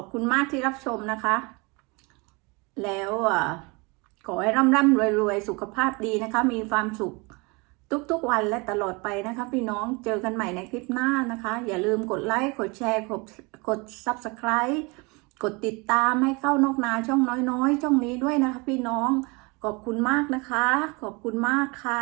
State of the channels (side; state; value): left; quieter; 27.9 dB